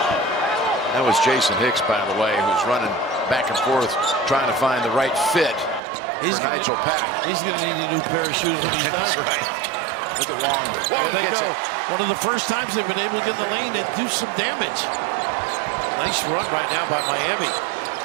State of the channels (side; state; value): left; drops out; at 5.8 s